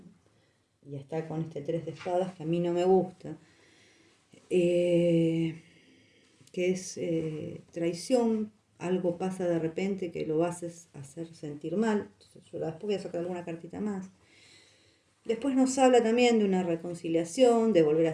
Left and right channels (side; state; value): both; identical; correlation 1.00